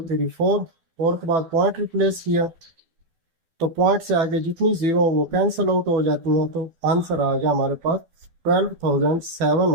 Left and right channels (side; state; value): left; late; 12 ms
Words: 3 4, 4 के बाद पॉइंट रिप्लेस किया तो पॉइंट से आगे जितनी जीरो वो कैंसिल आउट हो जाती हैं, तो आंसर आ गया हमारे पास